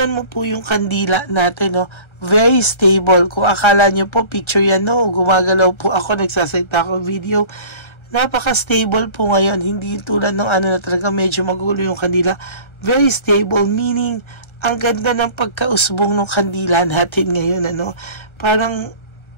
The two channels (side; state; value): right; late; 1.3 ms